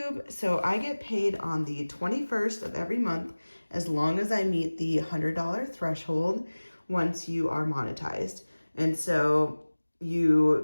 So I get paid on the 21st of every month as long as I meet the $100 threshold once you are monetized. And so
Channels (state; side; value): inverted; both; correlation -1.00